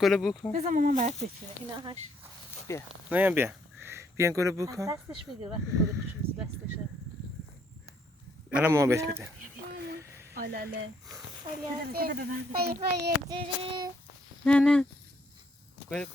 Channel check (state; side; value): normal; both; correlation 0.69